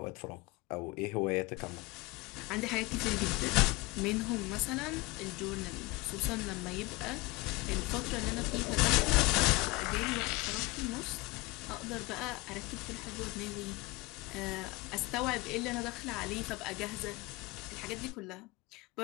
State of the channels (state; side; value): quieter; right; 23.5 dB